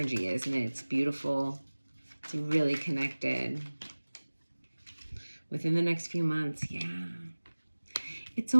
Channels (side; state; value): both; inverted; correlation -1.00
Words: is, and it's beautiful. It's really connected. Within the next few months, yeah. It's